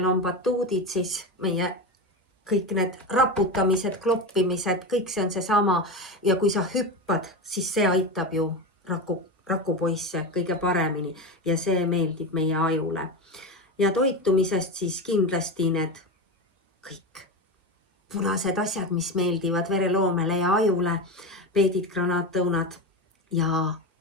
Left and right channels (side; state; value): both; normal; correlation 0.19